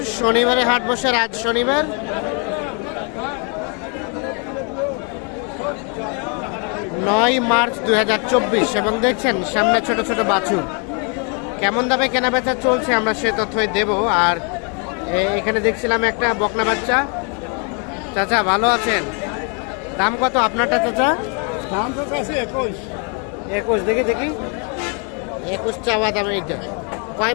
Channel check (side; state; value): right; quieter; 37.0 dB